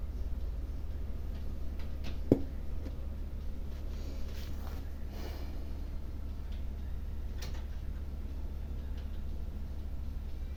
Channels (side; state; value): both; identical; correlation 1.00